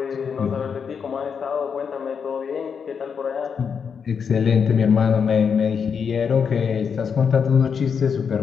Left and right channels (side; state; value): right; quieter; 6.5 dB